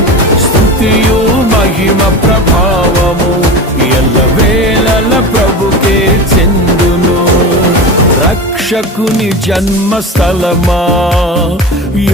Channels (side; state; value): both; normal; correlation 0.28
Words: స్తుతియు మహిమ ప్రభావము ఎల్లవేళల ప్రభుకే చెందును. రక్షకుని జన్మస్థలమా